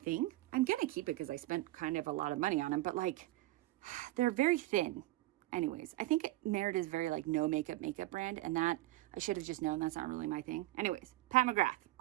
I'm going to keep it because I spent kind of a lot of money on them, but they're very thin. Anyways, I think Merit is very no makeup brand, and that I should have just known that's not really my thing. Anyways, Pat McGrath,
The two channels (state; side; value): quieter; left; 17.7 dB